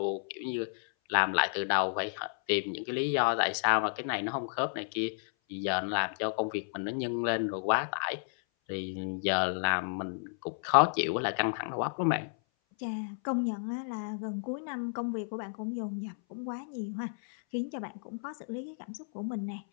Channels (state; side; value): silent; right; 56 dB below the other